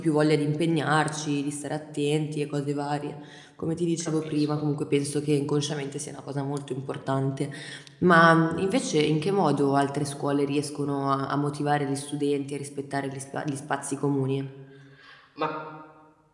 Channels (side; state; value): both; identical; correlation 1.00